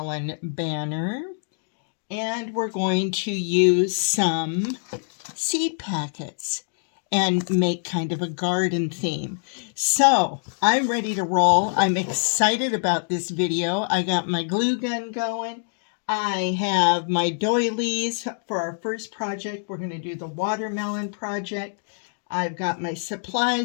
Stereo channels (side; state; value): right; silent; digital silence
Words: banner, and we're going to use some seed packets and make kind of a garden theme. So I'm ready to roll. I'm excited about this video. I got my glue gun going. I have my doilies for our first project. We're going to do the watermelon project. I've got my